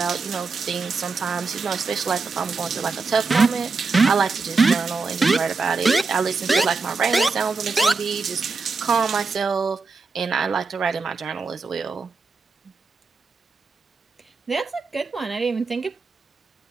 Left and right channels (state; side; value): quieter; left; 4.4 dB